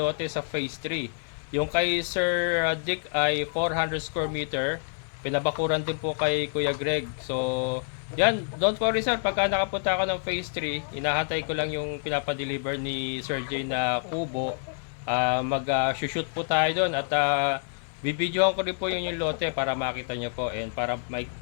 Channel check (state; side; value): silent; right; digital silence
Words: sa phase 3. Yung kay Sir Dick ay 400 square meter. Pinabakuran din po kay Kuya Greg. So, yan, don't worry sir, pagka nakapunta ako ng phase 3, inahantay ko lang yung pinapadeliver ni Sir J na kubo. Mag-shoot po tayo doon at bibidyohan ko rin po yung lote para makita nyo po and para